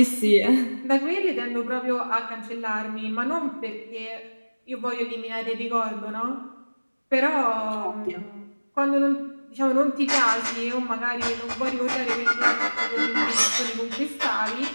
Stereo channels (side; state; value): both; inverted; correlation -1.00